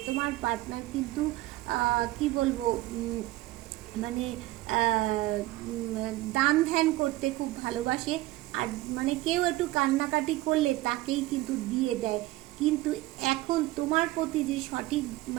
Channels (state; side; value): quieter; left; 17.9 dB